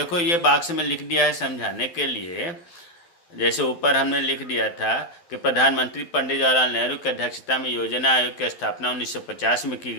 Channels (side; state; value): right; late; 12 ms